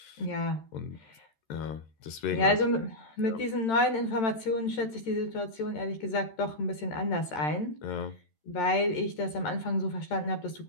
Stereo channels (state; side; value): late; right; 13 ms